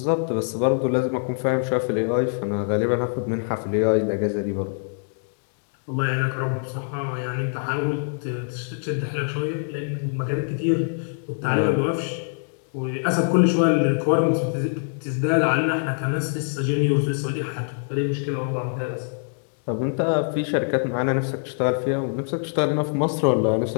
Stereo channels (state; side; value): silent; right; digital silence